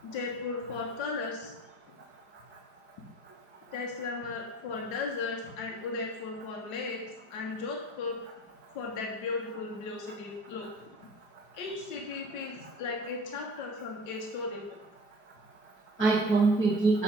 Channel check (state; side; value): late; right; 5.0 ms